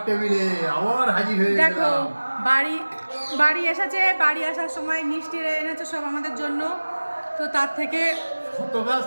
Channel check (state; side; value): inverted; both; correlation -1.00